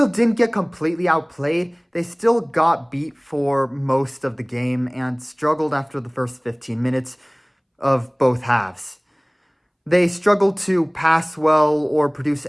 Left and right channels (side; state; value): both; identical; correlation 1.00